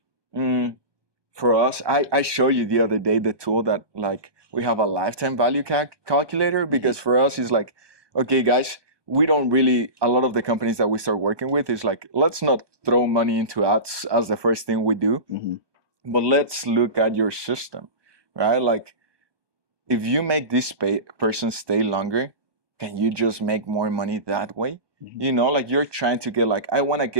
For us, I showed you the other day the tool that like we have a lifetime value calculator, because for us it's like, okay guys, we don't really, a lot of the companies that we start working with is like, let's not throw money into ads as the first thing we do, but let's look at your system, right? Like if you make this person stay longer, can you just make more money that way? You know, like you're trying to get like, I want to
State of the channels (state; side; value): late; left; 1.2 ms